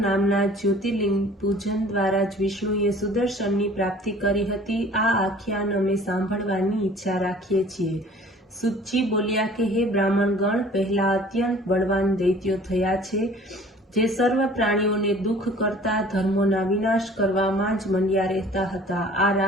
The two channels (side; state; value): both; normal; correlation 0.49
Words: ज्योतिर्लिंग पूजन द्वारा ज विष्णुए सुदर्शननी प्राप्ति करी हती। आ आख्यान अमे सांभळवानी इच्छा राखीए छीए। सुतजी बोल्या के हे ब्राह्मणगण, पहला अत्यंत बलवान दैत्यो थया छे, जे सर्व प्राणीओने दुख करता धर्मोना विनाश करवामां ज मंड्या रहता हता। आ